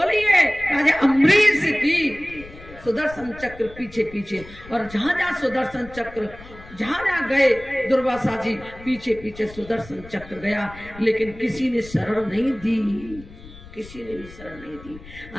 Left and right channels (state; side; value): noise; left; rumble, 18 dB below the sound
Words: राजा अम्बरीश की सुदर्शन चक्र पीछे पीछे, और जहां जहां सुदर्शन चक्र जहां जहां गए दुर्वासा जी पीछे पीछे सुदर्शन चक्र गया, लेकिन किसी ने शरण नहीं दी। किसी ने भी शरण नहीं दी।